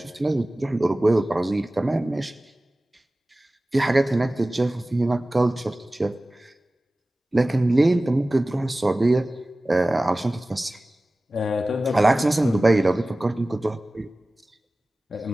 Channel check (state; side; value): normal; both; correlation 0.97